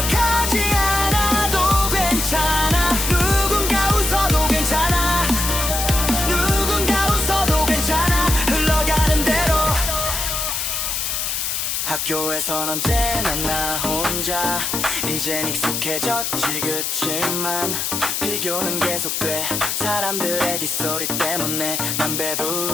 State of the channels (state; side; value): noise; left; hiss, 1 dB below the sound